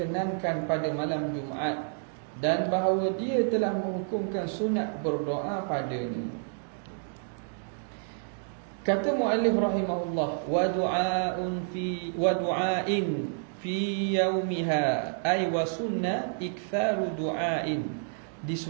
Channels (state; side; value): silent; left; digital silence